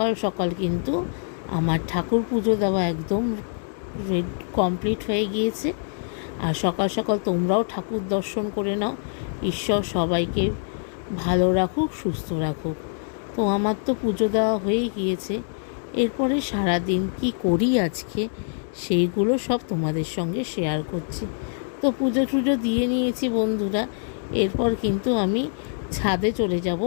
সকাল কিন্তু আমার ঠাকুর পুজো দেওয়া একদম কমপ্লিট হয়ে গিয়েছে। আর সকাল সকাল তোমরাও ঠাকুর দর্শন করে নাও। ঈশ্বর সবাইকে ভালো রাখুক, সুস্থ রাখুক। তো আমার তো পুজো দেওয়া হয়ে গিয়েছে। এরপরে সারাদিন কি করি আজকে, সেইগুলো সব তোমাদের সঙ্গে শেয়ার করছি। তো পুজো টুজো দিয়ে নিয়েছি বন্ধুরা। এরপর কিন্তু আমি ছাদে চলে যাব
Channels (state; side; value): silent; right; digital silence